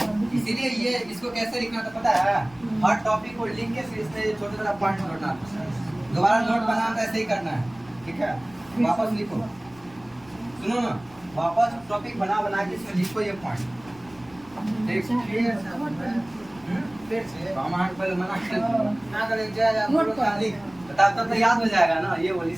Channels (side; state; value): left; noise; rumble, 25 dB below the sound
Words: इसीलिए ये इसको कैसे लिखना था पता है? हर टॉपिक को लिख के फिर इसमें छोटे छोटे पॉइंट जोड़ना, दोबारा नोट बनाना, ऐसे ही करना है। ठीक है, वापस लिखो, सुनो ना, वापस टॉपिक बना के इसमें लिखो ये पॉइंट। पहले मना कर तो याद हो जाएगा ना, ये बोल,